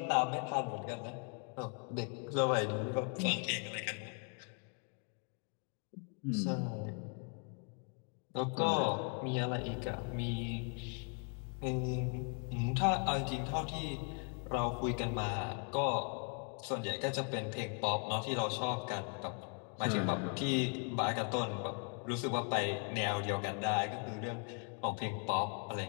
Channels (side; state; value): right; quieter; 39.8 dB